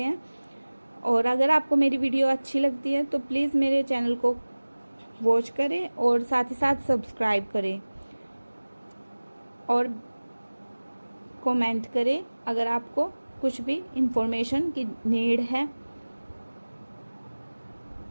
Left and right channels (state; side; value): inverted; both; correlation -1.00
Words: हैं, और अगर आपको मेरी वीडियो अच्छी लगती है तो प्लीज़ मेरे चैनल को वॉच करें और साथ ही साथ सब्सक्राइब करें और कमेंट करें अगर आपको कुछ भी इंफॉर्मेशन की नीड है।